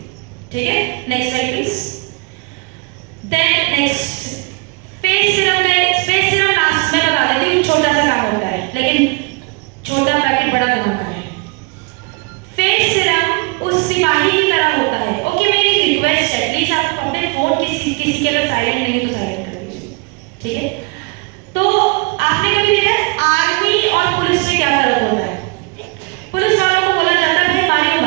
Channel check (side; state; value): left; quieter; 29.6 dB